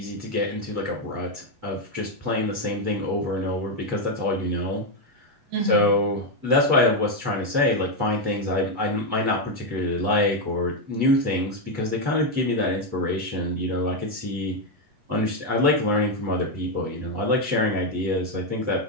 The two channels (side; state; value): left; late; 8.2 ms